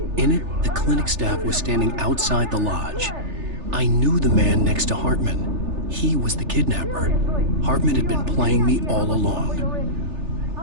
In it, the clinic staff was standing outside the lodge. I knew the man next to Hartman. He was the kidnapper. Hartman had been playing me all along.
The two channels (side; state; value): left; late; 3.4 ms